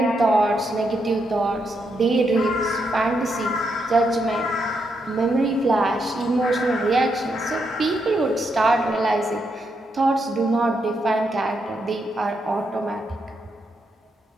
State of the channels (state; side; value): normal; both; correlation 0.80